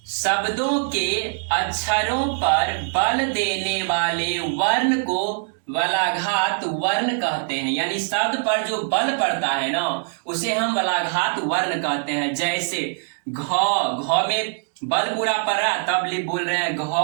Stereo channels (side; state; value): left; silent; digital silence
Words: शब्दों के अक्षरों पर बल देने वाले वर्ण को वलाघात वर्ण कहते हैं। यानी शब्द पर जो बल पड़ता है ना, उसे हम वलाघात वर्ण कहते हैं। जैसे घ में बल पूरा पड़ रहा है, तब बोल रहे हैं घ